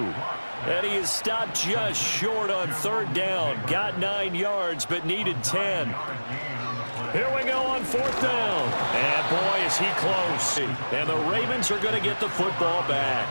And he is stopped just short on 3rd down. Got 9 yards, but needed 10. Here we go on 4th down. And boy, is he close. And the Ravens are going to get the football back.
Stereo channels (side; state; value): both; inverted; correlation -1.00